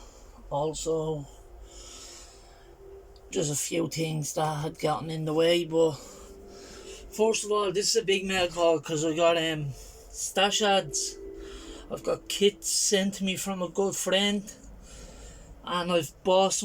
also just a few things that had gotten in the way. But first of all, this is a big mail call because I got stash ads. I've got kits sent to me from a good friend, and I've bought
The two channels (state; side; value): identical; both; correlation 1.00